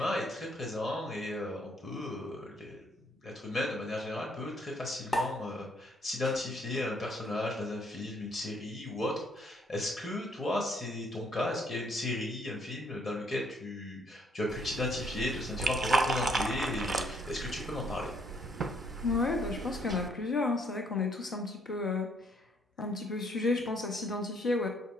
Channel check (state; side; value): normal; both; correlation 0.67